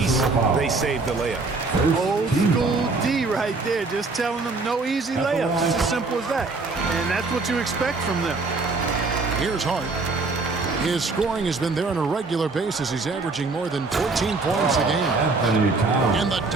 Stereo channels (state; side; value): quieter; left; 3.8 dB